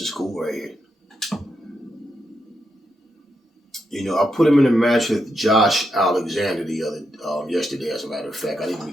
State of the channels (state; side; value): normal; both; correlation 0.83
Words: cool right here. You know, I put him in a match with Josh Alexander yesterday, as a matter of fact. I didn't